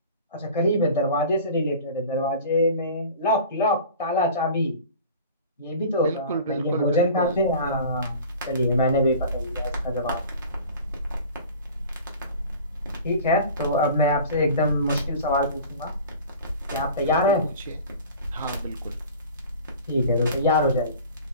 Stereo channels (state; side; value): inverted; both; correlation -0.41